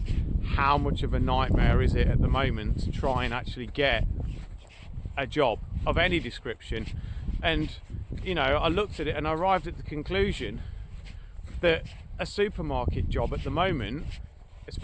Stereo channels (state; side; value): identical; both; correlation 1.00